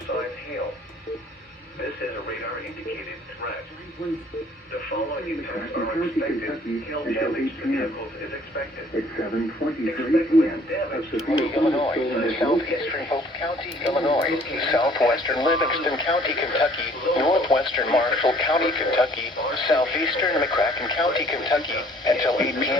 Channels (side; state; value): both; normal; correlation 0.57